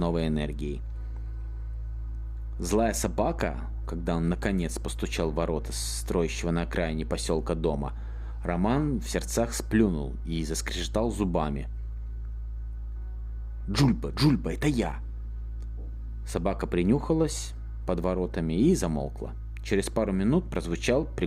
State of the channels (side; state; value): both; identical; correlation 1.00